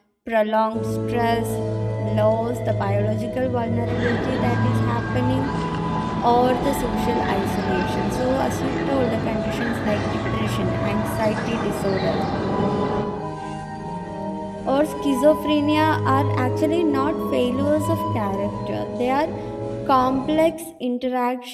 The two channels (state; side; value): identical; both; correlation 1.00